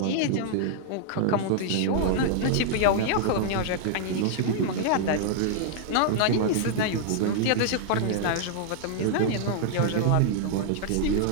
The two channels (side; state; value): both; different; correlation -0.01